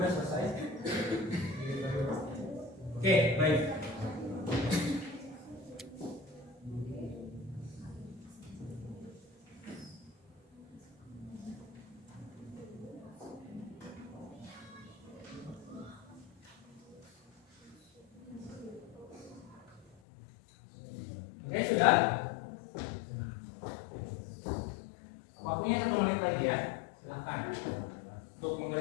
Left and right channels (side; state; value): right; drops out; at 19.9 s